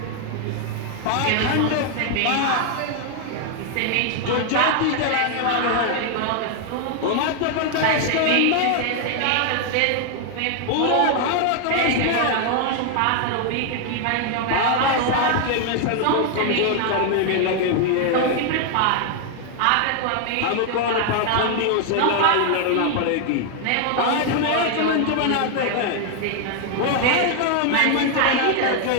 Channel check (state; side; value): different; both; correlation 0.00